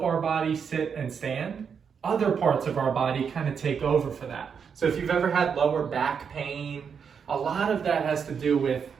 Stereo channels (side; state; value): left; quieter; 6.7 dB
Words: our body sit and stand, other parts of our body kind of take over for that. So if you've ever had lower back pain, a lot of that has to do with,